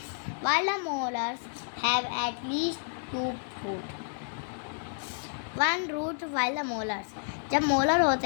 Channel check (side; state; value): right; silent; 55 dB below the other